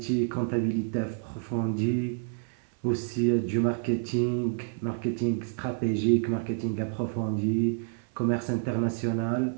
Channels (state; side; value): silent; left; 57 dB below the other